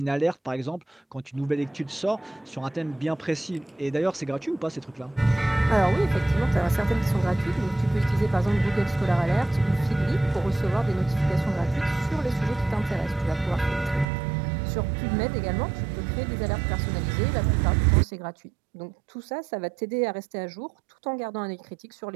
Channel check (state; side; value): drops out; left; at 14.1 s